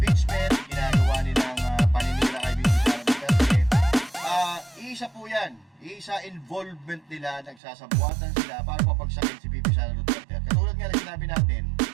ginagawa nilang paninira kay BP Sara Duterte. Isa po yan. Isa involvement nila, nagsasabuatan sila para papagsakin si BP Sara Duterte. At katulad nga na sinabi natin,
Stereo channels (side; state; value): left; drops out; at 7.6 s